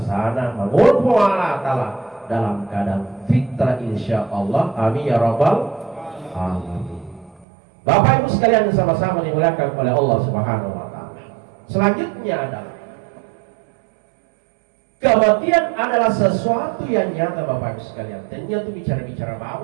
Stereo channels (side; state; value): left; drops out; at 7.5 s